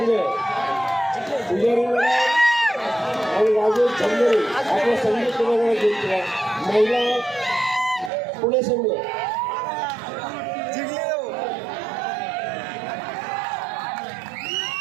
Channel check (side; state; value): left; drops out; at 8.1 s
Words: पुजारी आणि राजेश झंगरे आपला संघ क्रीडांगण जिंकला. महिला पुणे संघ